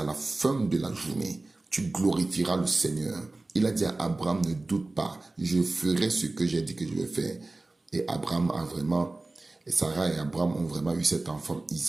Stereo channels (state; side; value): quieter; left; 3.1 dB